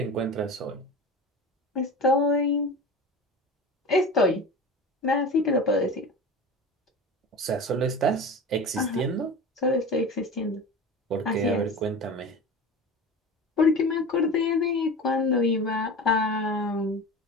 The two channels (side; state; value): both; normal; correlation 0.32